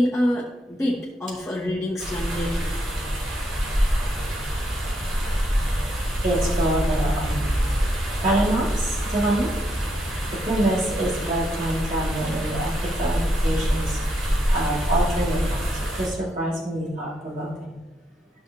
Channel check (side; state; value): both; normal; correlation 0.78